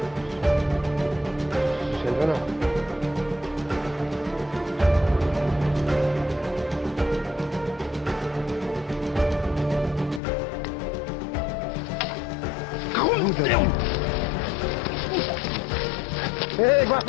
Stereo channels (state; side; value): drops out; right; at 10.2 s